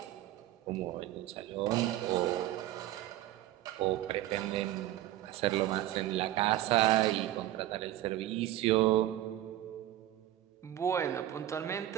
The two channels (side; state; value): left; quieter; 14.0 dB